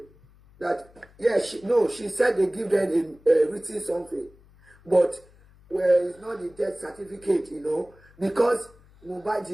That, she said they give them a written something. But it's not the death certificate, because Mohbad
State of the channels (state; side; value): noise; left; hum, 27 dB below the sound